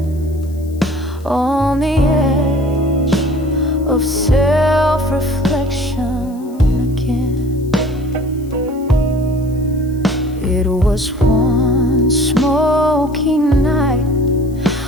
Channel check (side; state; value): left; noise; hiss, 27 dB below the sound